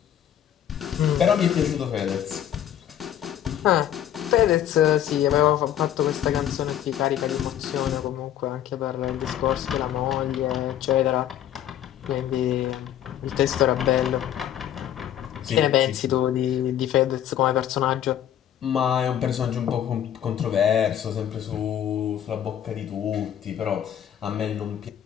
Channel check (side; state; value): right; quieter; 10.7 dB